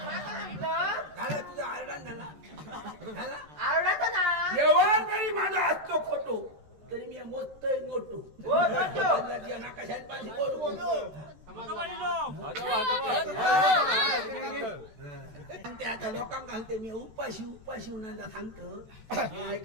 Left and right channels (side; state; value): left; late; 14 ms